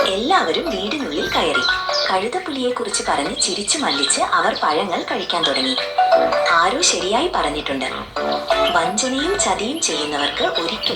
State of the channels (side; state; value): both; identical; correlation 1.00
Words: എല്ലാവരും വീടിനുള്ളിൽ കയറി. കഴുതപ്പുലിയെ കുറിച്ച് പറഞ്ഞ് ചിരിച്ചു മല്ലിച്ച് അവർ പഴങ്ങൾ കഴിക്കാൻ തുടങ്ങി. ആരോ ശരിയായി പറഞ്ഞിട്ടുണ്ട്, വഞ്ചനയും ചതിയും ചെയ്യുന്നവർക്ക്